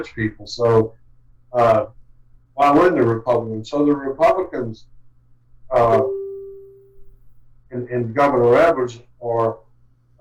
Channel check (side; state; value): both; identical; correlation 1.00